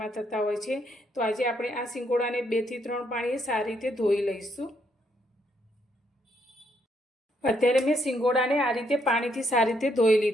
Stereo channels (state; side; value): normal; both; correlation 0.74